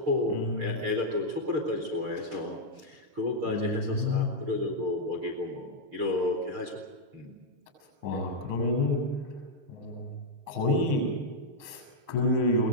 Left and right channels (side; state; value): left; late; 6.5 ms